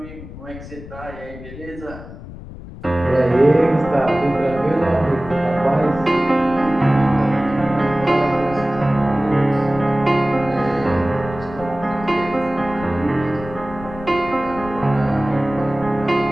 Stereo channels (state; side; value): noise; left; rumble, 14 dB below the sound